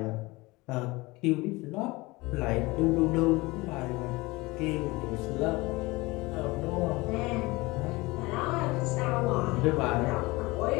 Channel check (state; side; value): quieter; right; 22.6 dB